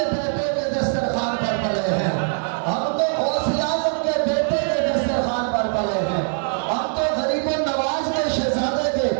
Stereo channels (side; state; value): left; silent; 64 dB below the other